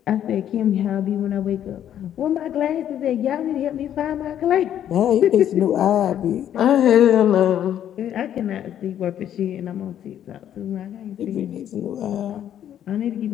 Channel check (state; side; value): quieter; right; 10.5 dB